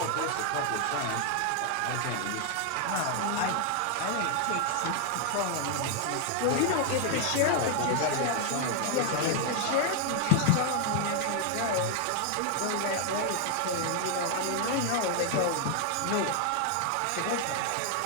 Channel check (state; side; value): different; both; correlation 0.00